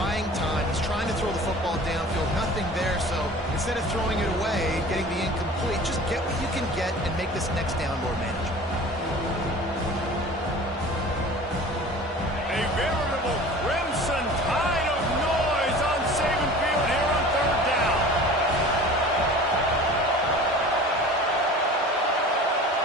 time. He's trying to throw the football downfield, nothing there. So instead of throwing it away, getting the incomplete, just get what you can get and make this next down more manageable. A veritable crimson tide of noise on Saban Field here on third down.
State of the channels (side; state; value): both; normal; correlation 0.42